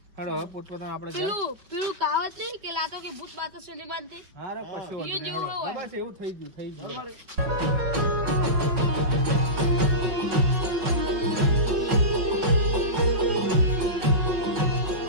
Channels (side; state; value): left; late; 5.2 ms